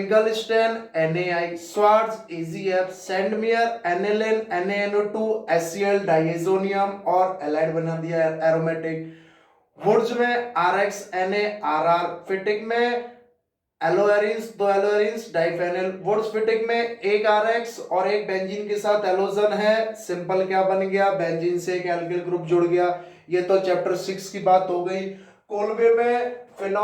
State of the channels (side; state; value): both; identical; correlation 1.00